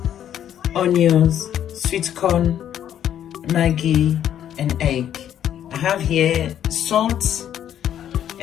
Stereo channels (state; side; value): quieter; right; 10.3 dB